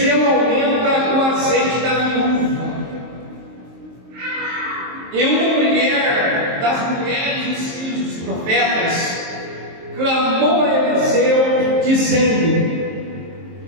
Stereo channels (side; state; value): left; late; 23 ms